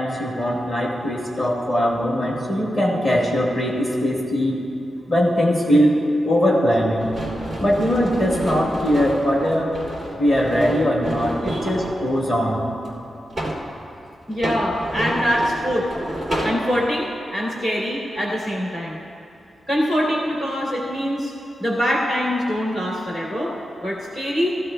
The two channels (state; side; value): normal; both; correlation 0.89